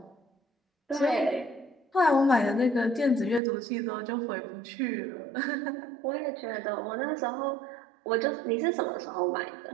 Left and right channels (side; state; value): left; drops out; at 3.4 s